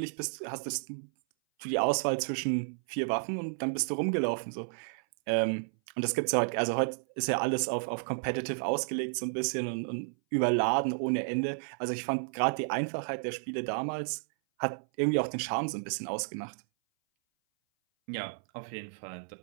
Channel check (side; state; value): left; silent; 57 dB below the other